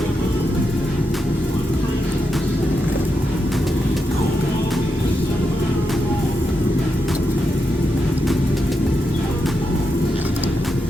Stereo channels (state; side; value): normal; both; correlation 0.86